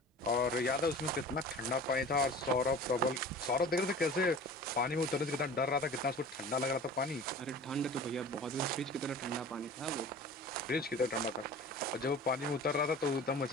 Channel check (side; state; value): both; normal; correlation 0.40